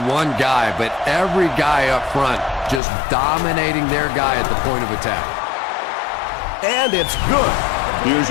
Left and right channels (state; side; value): drops out; right; at 2.8 s